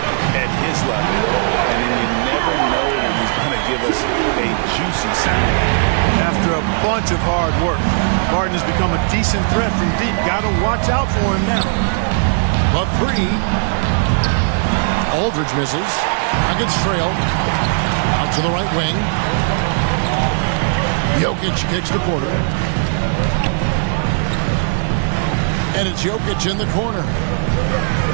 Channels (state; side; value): silent; left; 68 dB below the other